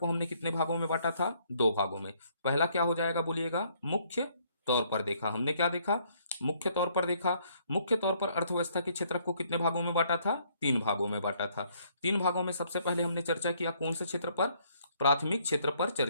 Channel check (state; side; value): inverted; both; correlation -0.66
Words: को हमने कितने भागों में बांटा था? 2 भागों में। पहला क्या हो जाएगा बोलिएगा? मुख्य तौर पर देखा। हमने क्या देखा? मुख्य तौर पर देखा। मुख्य तौर पर अर्थव्यवस्था के क्षेत्रक को कितने भागों में बांटा था? 3 भागों में बांटा था। 3 भागों में सबसे पहले हमने चर्चा किया कौन से क्षेत्र पर? प्राथमिक क्षेत्र पर